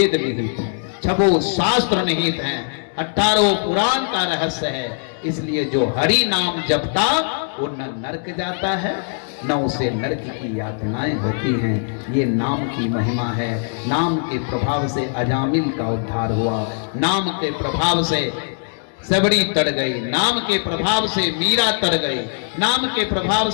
निहित हैं, 6 शास्त्र निहित हैं, 18 पुराण का रहस्य है। इसलिए जो हरि नाम जपता वो न नरक जाता है न उसे नरक की यातनाएं होती हैं। ये नाम की महिमा है। नाम के प्रभाव से अजामिल का उद्धार हुआ, नाम के प्रभाव से सबरी तर गई, नाम के प्रभाव से मीरा तर गई, नाम के प्रभाव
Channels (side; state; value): right; silent; digital silence